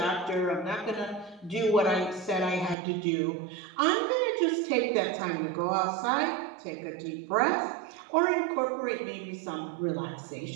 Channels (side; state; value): left; drops out; at 2.8 s